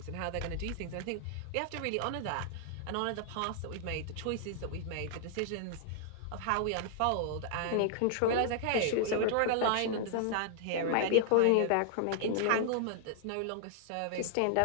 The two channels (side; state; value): both; different; correlation -0.01